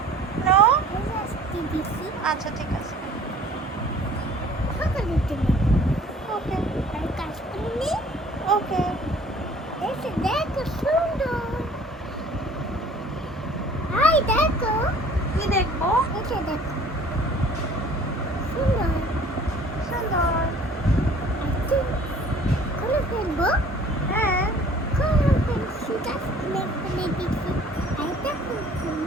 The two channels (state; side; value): normal; both; correlation 0.52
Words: নো? আচ্ছা ঠিক আছে। ওকে ওকে। দেখো কি দেখবো? এটা দেখো